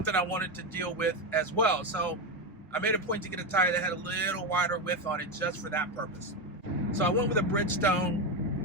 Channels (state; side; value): normal; both; correlation 0.12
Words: I wanted to deal with as well. So I made a point to get a tire that had a little wider width on it just for that purpose. So I went with a